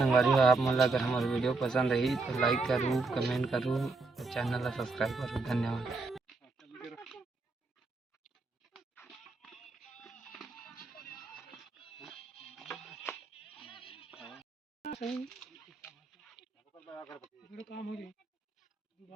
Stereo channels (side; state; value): left; quieter; 3.8 dB